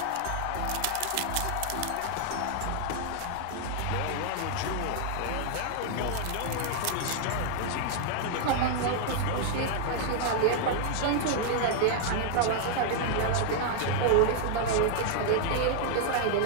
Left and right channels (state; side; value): different; both; correlation 0.00